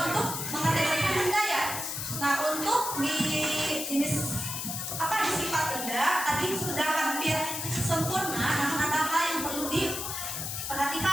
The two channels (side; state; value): left; noise; hiss, 4 dB below the sound